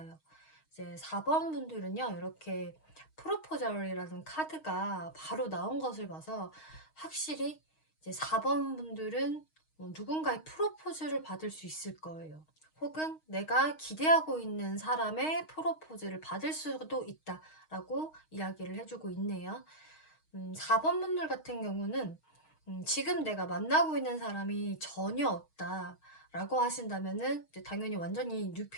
이제 4번 분들은요, 이렇게 프로포절이라는 카드가 바로 나온 것을 봐서 확실히 이제 4번 분들은 누군가의 프로포즈를 받을 수 있을 거예요. 혹은 내가 기대하고 있는 사람의 프로포즈를 받을 수도 있다라고 이야기를 해주고 있네요. 4번 분들 같은 경우는 지금 내가 만나고 있는 사람이 전혀 없다라고 하신다면은 이제 당연히 완전히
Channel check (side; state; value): right; late; 6.4 ms